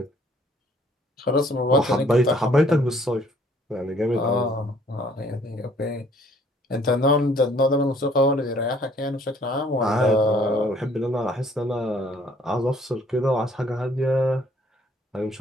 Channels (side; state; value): both; normal; correlation 0.60